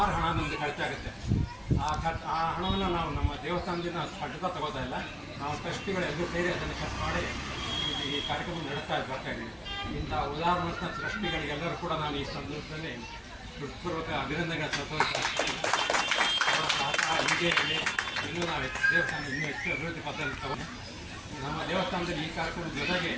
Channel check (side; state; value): both; identical; correlation 1.00